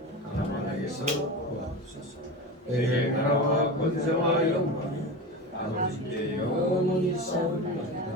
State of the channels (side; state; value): both; normal; correlation 0.26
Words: 가난에게서 구하옵소서. 내게 나라와 권세와 영광이 아버지께 영원히 싸우리이다.